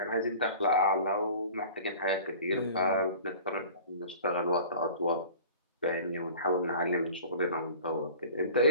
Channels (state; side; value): inverted; both; correlation -0.44